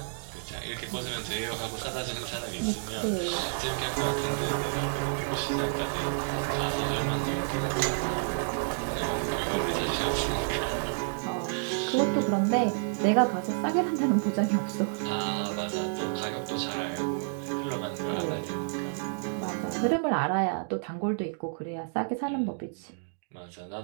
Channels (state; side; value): silent; left; digital silence